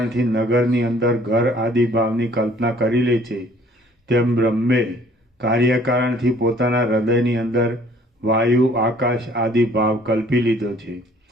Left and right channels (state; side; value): normal; both; correlation 0.57